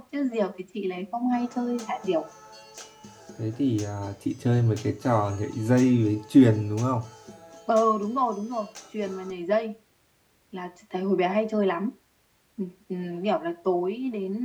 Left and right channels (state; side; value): identical; both; correlation 1.00